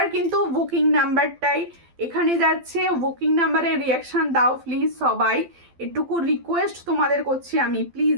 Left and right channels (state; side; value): late; left; 12 ms